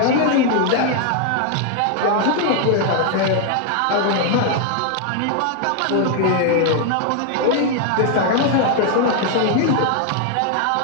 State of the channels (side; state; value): both; different; correlation 0.00